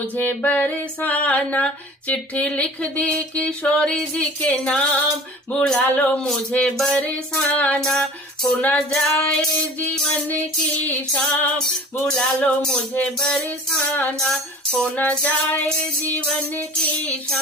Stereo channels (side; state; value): both; normal; correlation 0.42